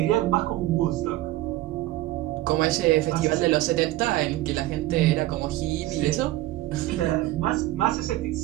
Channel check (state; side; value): quieter; left; 16.5 dB